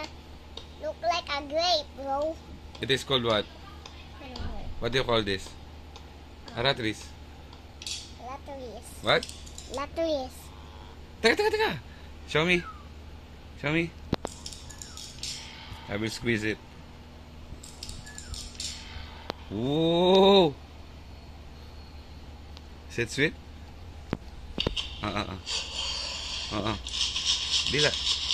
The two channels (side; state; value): both; identical; correlation 1.00